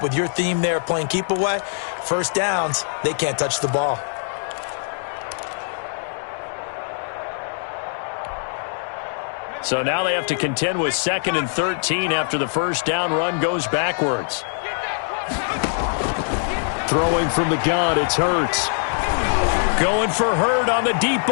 with your theme there, playing keep away, first downs, they can't touch the ball. So now they have to contend with 2nd and 13 after the first down run goes backwards. Throwing from the gun, it's Hurts. Going for Hurd on the deep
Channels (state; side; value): silent; right; 64 dB below the other